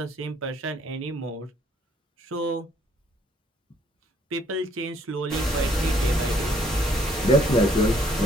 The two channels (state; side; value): normal; both; correlation 0.65